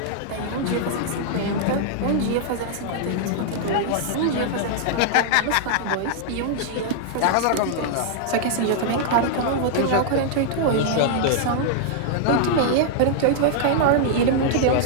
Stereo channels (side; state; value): both; different; correlation -0.01